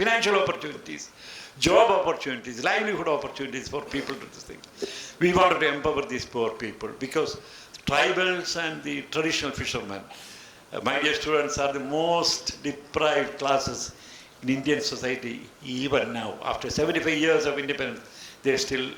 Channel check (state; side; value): identical; both; correlation 1.00